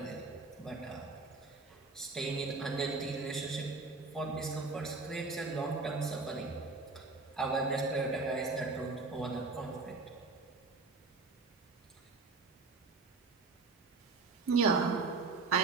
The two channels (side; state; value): left; quieter; 3.9 dB